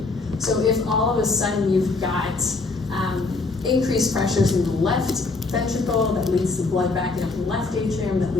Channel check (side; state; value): right; quieter; 3.7 dB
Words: So if all of a sudden you've got increased pressures in the left ventricle that leads to blood backing up in the left atrium, that